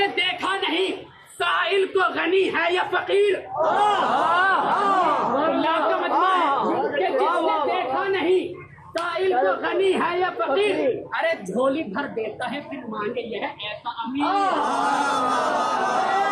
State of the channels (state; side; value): identical; both; correlation 1.00